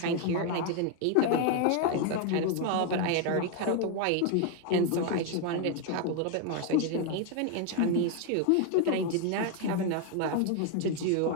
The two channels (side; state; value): both; different; correlation 0.01